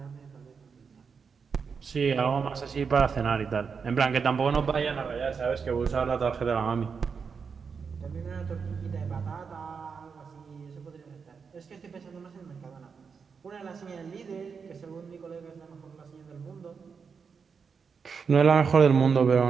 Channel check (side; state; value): left; quieter; 5.8 dB